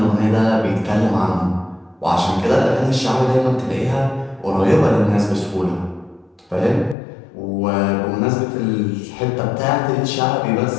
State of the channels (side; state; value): right; drops out; at 7.0 s